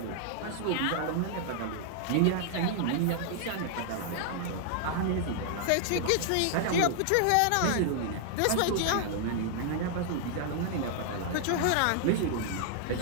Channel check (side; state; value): both; different; correlation -0.01